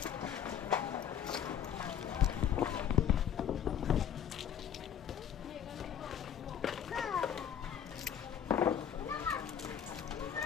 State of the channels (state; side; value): quieter; right; 9.0 dB